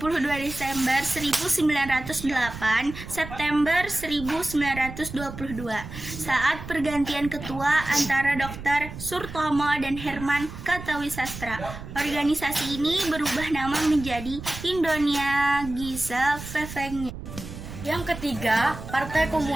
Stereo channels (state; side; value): noise; right; rumble, 11 dB below the sound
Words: Desember 1908 September 1922 saat pergantian ketua antara Dr. Surtomo dan Herman Kartawisastra. Organisasi ini berubah nama menjadi Indonesia Gesellschaft. Yang ketiga, Partai